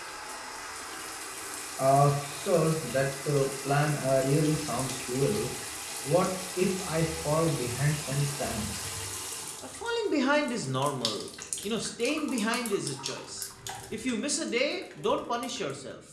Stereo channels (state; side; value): identical; both; correlation 1.00